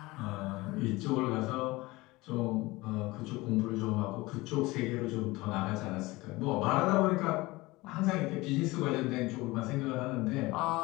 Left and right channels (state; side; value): quieter; right; 21.2 dB